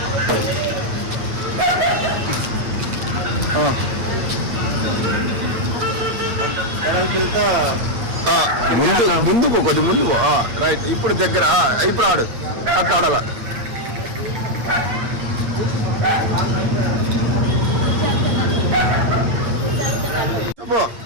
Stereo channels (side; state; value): left; late; 8.6 ms